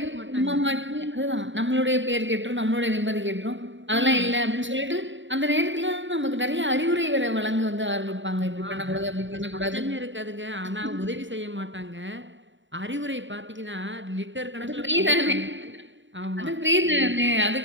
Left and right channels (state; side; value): late; left; 0.55 ms